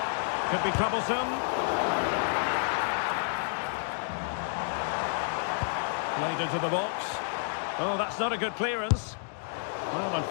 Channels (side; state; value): right; silent; digital silence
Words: Could be troublesome. Played into the box. Oh, that's not a good clearance. Well,